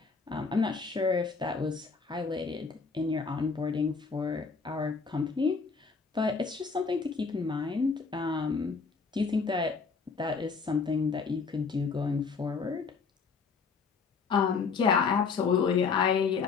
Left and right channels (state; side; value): quieter; right; 5.1 dB